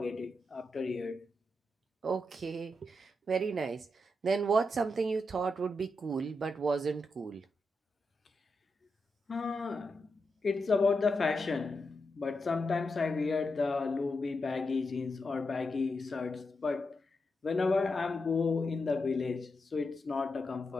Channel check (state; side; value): normal; both; correlation 0.86